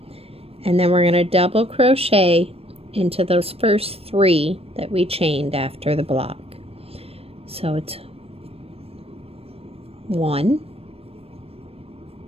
And then we're going to double crochet into those first 3 that we chained after the block. So it's 1,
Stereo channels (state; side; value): late; left; 0.28 ms